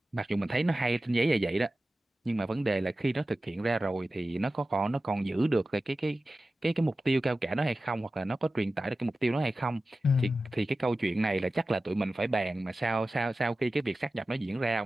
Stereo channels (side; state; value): both; normal; correlation 0.95